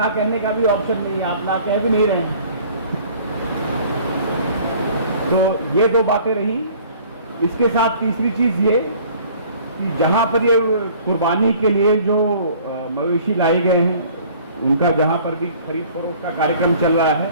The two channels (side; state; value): both; inverted; correlation -0.52